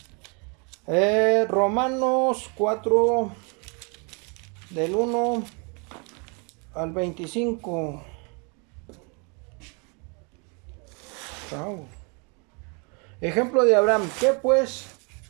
Romanos 4, del 1 al 25. Chao. Ejemplo de Abraham. ¿Qué pues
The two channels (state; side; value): quieter; left; 34.1 dB